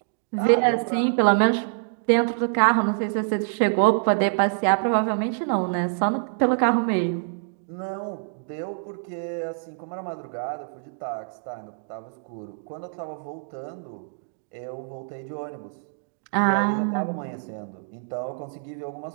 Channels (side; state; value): left; silent; digital silence